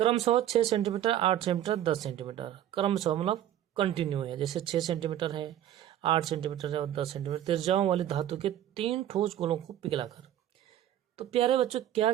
6 सेंटीमीटर, 8 सेंटीमीटर, 10 सेंटीमीटर, क्रमशः मतलब कंटिन्यू है, जैसे 6 सेंटीमीटर है, 8 सेंटीमीटर है और 10 सेंटीमीटर त्रिज्याओं वाली धातु के 3 ठोस गोलों को पिघलाकर तो प्यारे बच्चों क्या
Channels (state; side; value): quieter; left; 11.7 dB